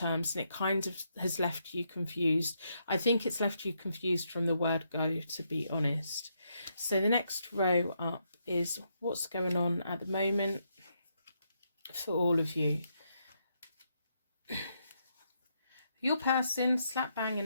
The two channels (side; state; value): both; inverted; correlation -0.79